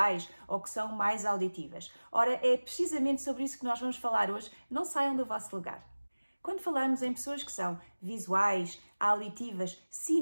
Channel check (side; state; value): both; inverted; correlation -1.00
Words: ou que são mais auditivas. Ora, é precisamente sobre isso que nós vamos falar hoje. Não saiam do vosso lugar. Quando falamos em pessoas que são visuais, auditivas,